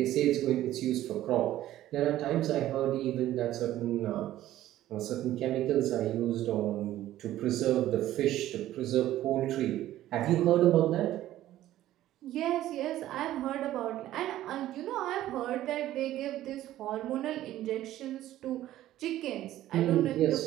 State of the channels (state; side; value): quieter; left; 13.9 dB